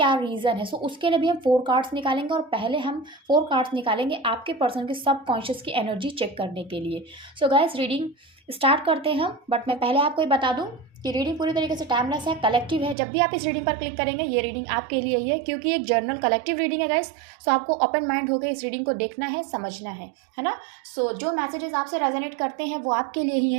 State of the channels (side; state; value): left; drops out; at 13.0 s